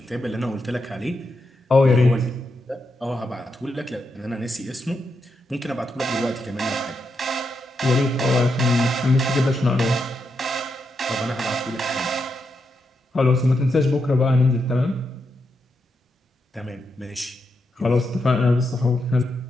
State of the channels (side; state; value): both; normal; correlation 0.83